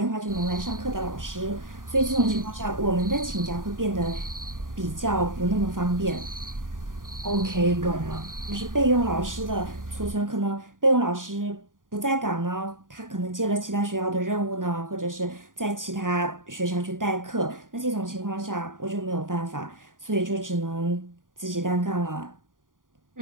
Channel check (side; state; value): left; late; 0.89 ms